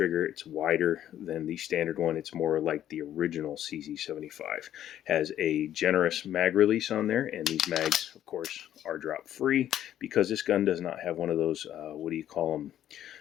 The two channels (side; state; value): right; quieter; 11.4 dB